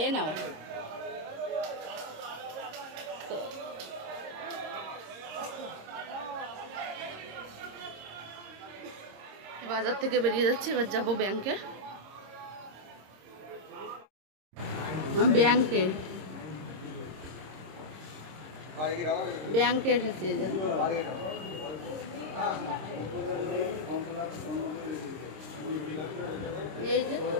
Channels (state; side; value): late; left; 26 ms